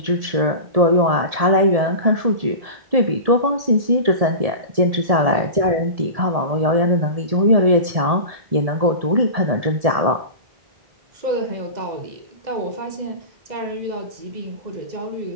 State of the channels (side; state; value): left; late; 1.7 ms